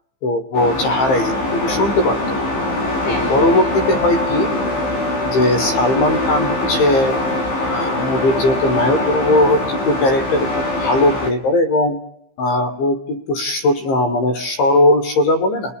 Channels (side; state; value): right; late; 15 ms